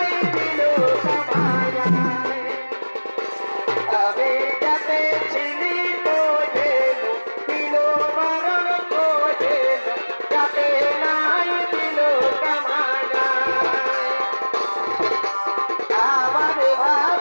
দিল কামায় আমি যাতে ছিলি বোঝে দিল বারণ বোঝে যাতে নাই দিল কামায় আমার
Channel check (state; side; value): inverted; both; correlation -1.00